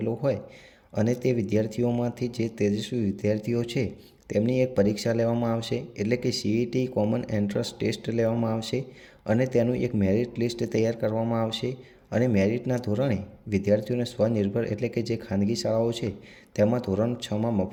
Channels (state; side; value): identical; both; correlation 1.00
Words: હોય અને તે વિદ્યાર્થીઓમાંથી જે તેજસ્વી વિદ્યાર્થીઓ છે તેમની એક પરીક્ષા લેવામાં આવશે, એટલે કે CET કોમન એન્ટ્રન્સ ટેસ્ટ લેવામાં આવશે અને તેનું એક મેરિટ લિસ્ટ તૈયાર કરવામાં આવશે અને મેરિટના ધોરણે વિદ્યાર્થીઓને સ્વનિર્ભર એટલે કે જે ખાનગી શાળાઓ છે તેમાં ધોરણ 6માં